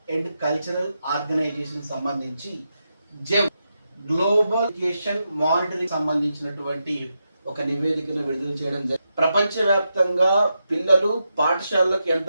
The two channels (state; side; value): inverted; both; correlation -0.86